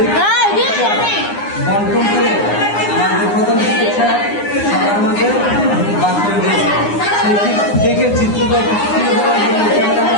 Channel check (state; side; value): late; right; 9.7 ms